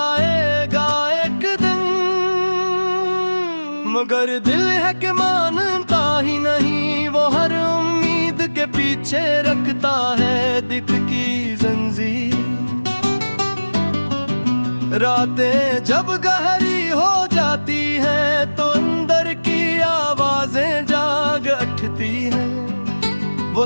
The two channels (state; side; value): inverted; both; correlation -1.00